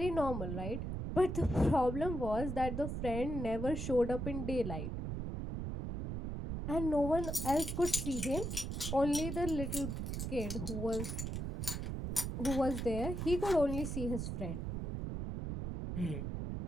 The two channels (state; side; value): noise; right; rumble, 4 dB below the sound